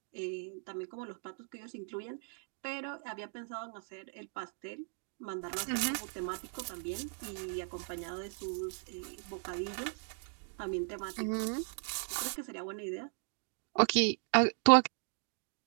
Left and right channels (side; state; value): left; silent; 53 dB below the other